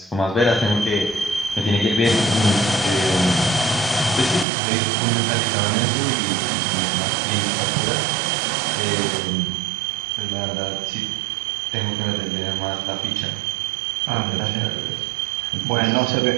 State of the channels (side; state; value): left; drops out; at 4.5 s